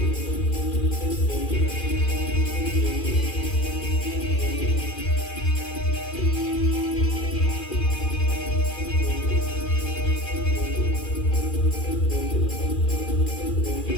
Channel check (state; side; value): late; right; 2.4 ms